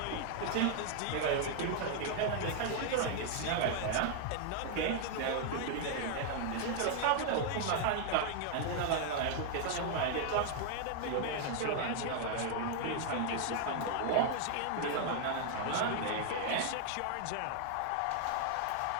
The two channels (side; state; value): both; different; correlation 0.00